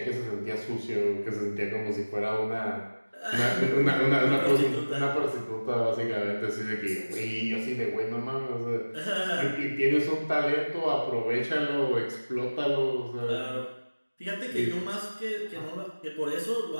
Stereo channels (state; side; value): inverted; both; correlation -1.00